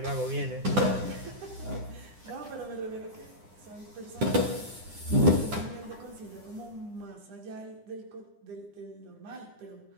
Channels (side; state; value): left; late; 9.9 ms